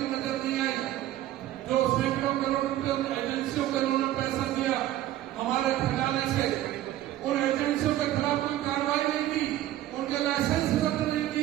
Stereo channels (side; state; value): left; quieter; 13.7 dB